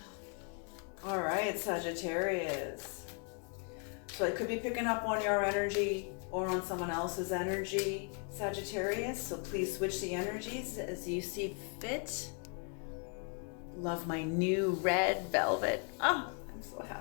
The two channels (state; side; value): quieter; right; 39.5 dB